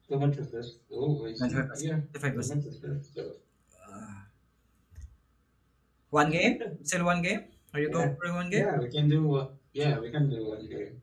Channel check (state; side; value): identical; both; correlation 1.00